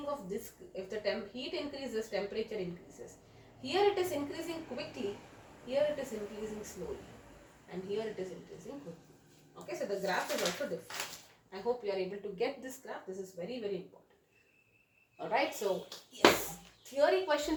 of this? If the heat increases, temperature increases. Here it is increasing quickly, here it is increasing slowly, and here it is increasing quickly. Okay, so the graph is also different. I hope you are able to get this graph. This is very, very important. Alright, so yes, theory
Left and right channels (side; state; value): both; identical; correlation 1.00